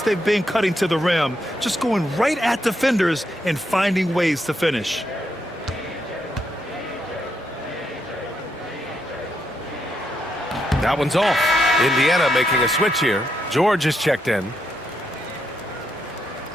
been cutting to the rim, just going right at defenders and finding ways to finish. That one's off. Indiana making a switch here. George is checked in.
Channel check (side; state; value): both; normal; correlation 0.80